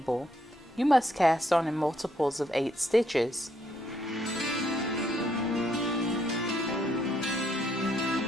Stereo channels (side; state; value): both; normal; correlation 0.73